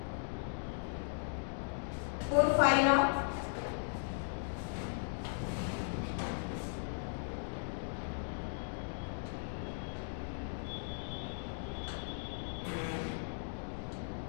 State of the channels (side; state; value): right; silent; digital silence